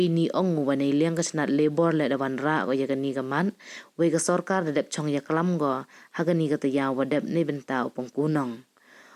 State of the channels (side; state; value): both; identical; correlation 1.00